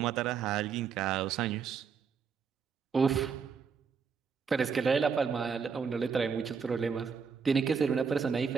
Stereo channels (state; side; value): quieter; left; 6.0 dB